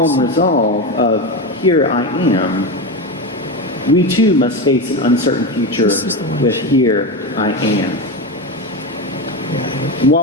resolve of, "Here I am," we too must face an uncertain future with, "Here I am." And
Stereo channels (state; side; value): normal; both; correlation 0.17